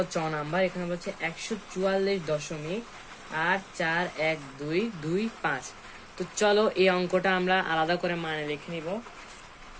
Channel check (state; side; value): identical; both; correlation 1.00